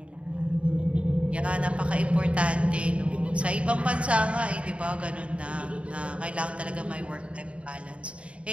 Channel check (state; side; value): late; left; 0.061 ms